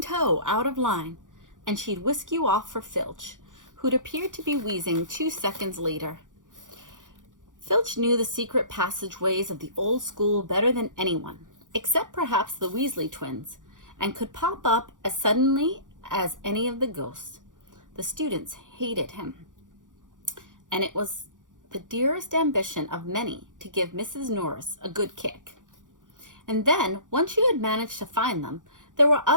out of line, and she'd whisk you off for Filch, who'd appeared to be wheezing 2 seconds later. Filch knew the secret passageways of the old school better than anyone, except perhaps the Weasley twins, and could pop up as suddenly as any of the ghosts. The students hated him, and it was the dearest ambition of many to give Mrs. Norris a good kick. And then, once you had managed to find them, there were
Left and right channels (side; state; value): left; late; 0.88 ms